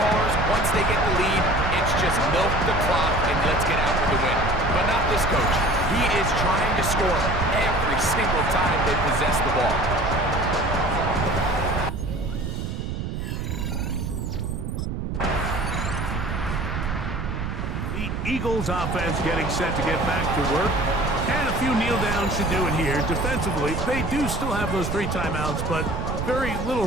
once they get the lead, it's just milk the clock and let's get out with the win. But not this coach. He is trying to score every single time they possess the ball. The Eagles offense getting set to get back to work. And a few kneel downs should do it here. Defensively, they do still have those 3 timeouts, but very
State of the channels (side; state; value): right; noise; rumble, 3 dB below the sound